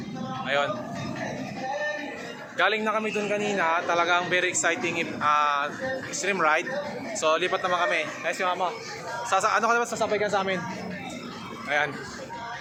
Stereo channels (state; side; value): identical; both; correlation 1.00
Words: Ayun. Galing na kami dun kanina, talagang very exciting extreme ride. So lipat naman kami. Nice yung Mama. Ano ka naman sasabay ka sa amin? Ayan.